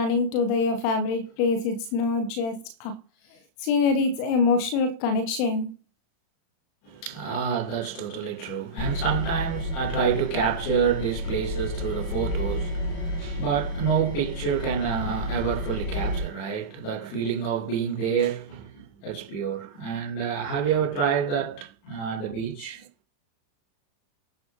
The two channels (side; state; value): right; late; 35 ms